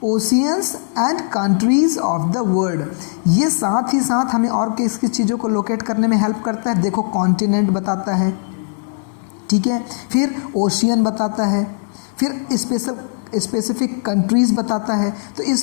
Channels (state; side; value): silent; right; digital silence